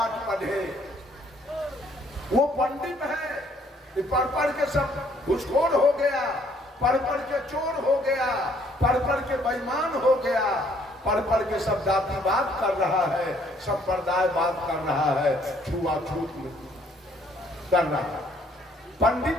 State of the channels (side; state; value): both; normal; correlation 0.64